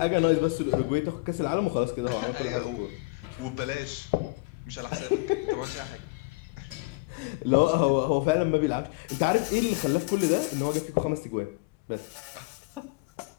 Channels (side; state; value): right; quieter; 25.4 dB